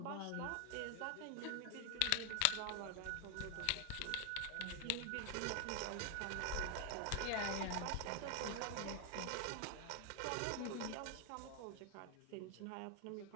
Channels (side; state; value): both; different; correlation 0.00